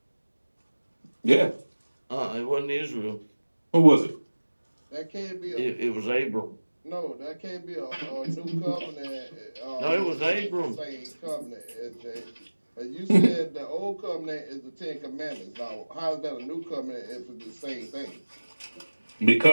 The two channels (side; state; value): both; inverted; correlation -1.00